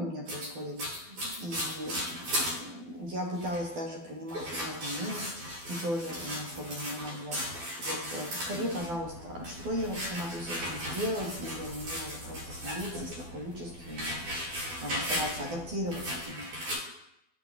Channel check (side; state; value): left; late; 12 ms